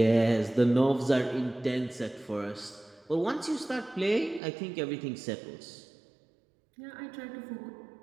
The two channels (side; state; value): left; drops out; at 4.4 s